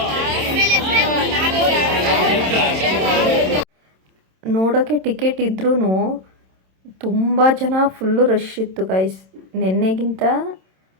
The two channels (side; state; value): left; late; 27 ms